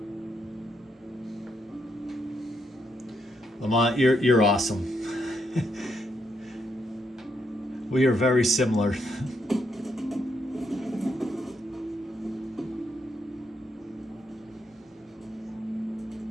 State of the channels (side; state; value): both; normal; correlation 0.78